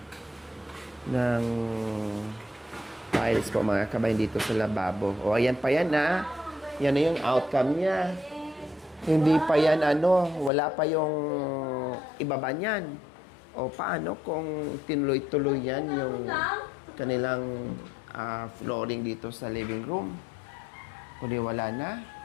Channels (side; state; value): right; drops out; at 10.5 s